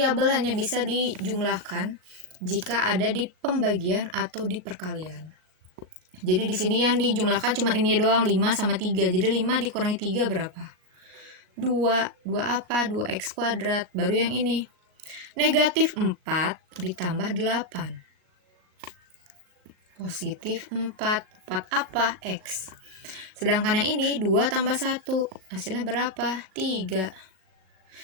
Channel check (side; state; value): left; late; 37 ms